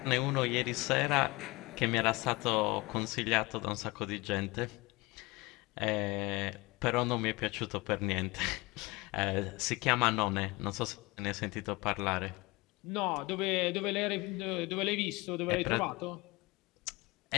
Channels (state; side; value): quieter; right; 23.5 dB